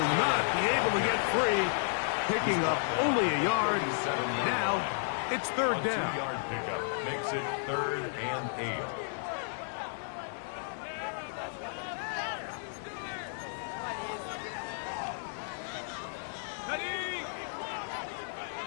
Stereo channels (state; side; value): silent; right; digital silence